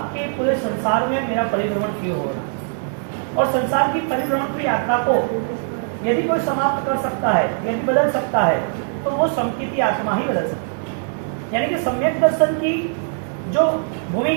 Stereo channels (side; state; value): left; silent; digital silence